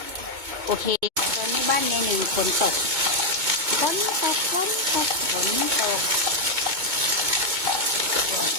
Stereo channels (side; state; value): left; late; 2.2 ms